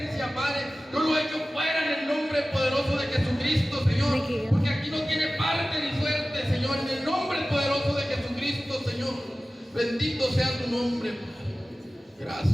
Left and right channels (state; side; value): normal; both; correlation 0.96